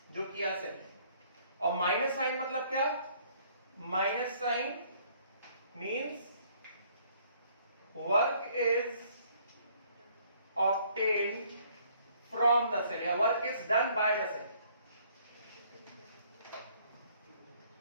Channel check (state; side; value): inverted; both; correlation -0.62